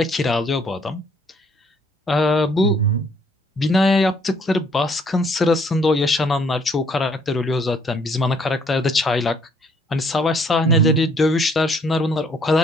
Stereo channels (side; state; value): both; normal; correlation 0.64